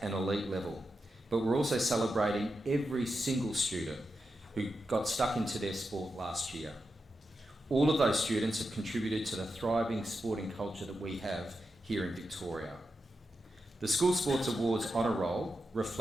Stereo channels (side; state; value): both; normal; correlation 0.88